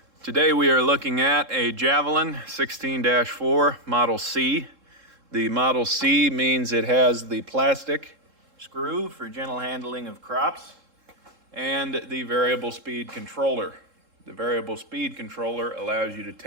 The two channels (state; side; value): late; left; 3.7 ms